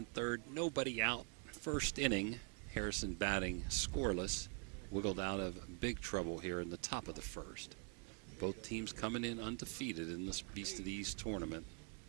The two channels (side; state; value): left; quieter; 38.0 dB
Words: third, nobody out. First inning, Harrison batting scoreless, wiggled out of big trouble here in the top of the first. Both teams coming in undefeated in this Beast of the East tournament.